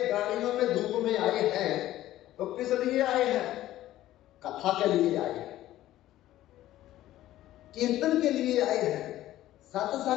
गाड़ियों में धूप में आए हैं, तो किस लिए आए हैं? कथा के लिए आए हैं, कीर्तन के लिए आए हैं,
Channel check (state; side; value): quieter; right; 14.3 dB